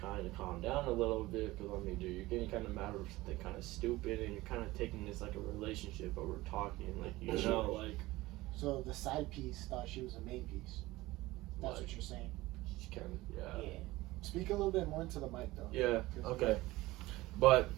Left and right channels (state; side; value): quieter; left; 18.9 dB